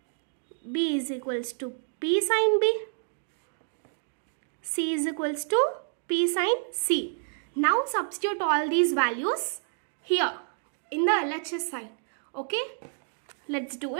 b is equals to p sine b, c is equals to p sine c. Now substitute all these values here in the LHS side. Okay, let's do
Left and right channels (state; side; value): silent; left; digital silence